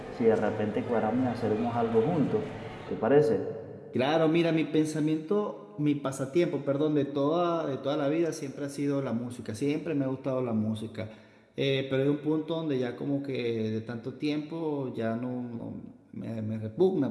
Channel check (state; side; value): identical; both; correlation 1.00